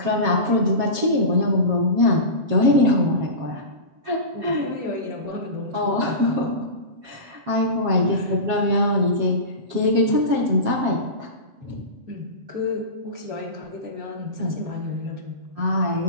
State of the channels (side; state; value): left; late; 7.4 ms